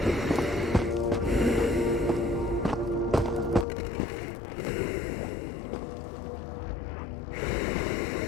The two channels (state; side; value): drops out; right; at 3.7 s